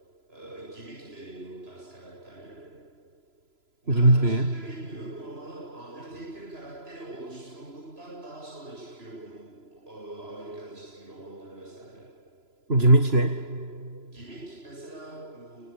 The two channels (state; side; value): late; left; 3.0 ms